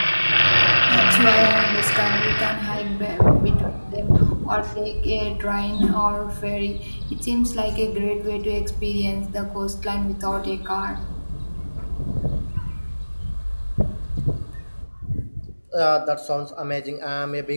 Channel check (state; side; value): inverted; both; correlation -1.00